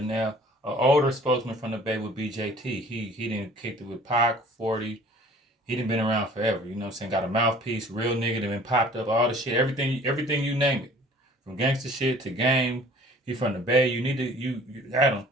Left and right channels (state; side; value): normal; both; correlation 0.50